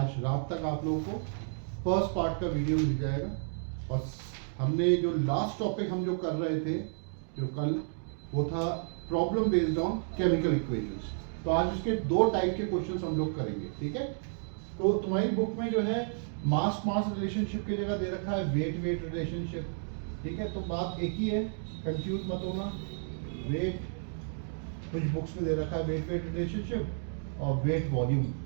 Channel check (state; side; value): silent; left; digital silence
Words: रात तक आप लोगों को फर्स्ट पार्ट का वीडियो मिल जाएगा। और हमने जो लास्ट टॉपिक हम जो कर रहे थे जो कल, वो था problem based on chemical equations. तो आज इसके दो टाइप के क्वेश्चंस हम लोग करेंगे, ठीक है। तो तुम्हारी बुक में जो है मास मास रिलेशनशिप की जगह दे रखा है वेट वेट रिलेशनशिप, ठीक है। तो बात एक ही है, कंफ्यूज मत होना। वेट कुछ बुक्स में दे रखा है वेट वेट रिलेशनशिप और वेट वॉल्यूम,